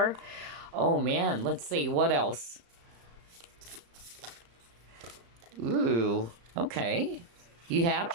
Oh man, let's see, what else? Ooh, okay. You have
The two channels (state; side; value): late; left; 35 ms